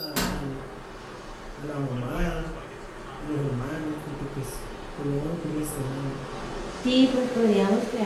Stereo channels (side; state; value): both; identical; correlation 1.00